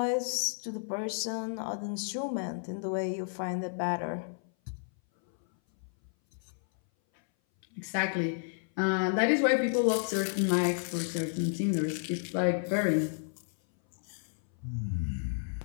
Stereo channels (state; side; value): silent; right; 57 dB below the other